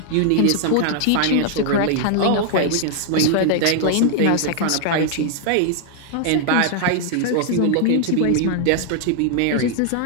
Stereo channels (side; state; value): both; different; correlation 0.00